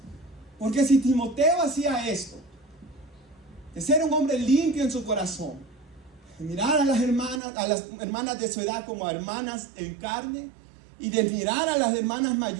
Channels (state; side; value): drops out; left; at 7.4 s